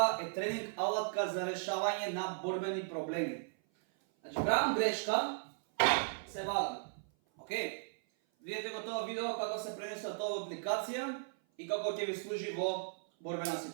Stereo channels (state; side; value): silent; left; 54 dB below the other